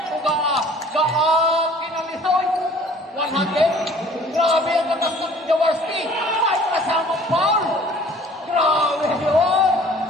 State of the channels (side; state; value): both; normal; correlation 0.52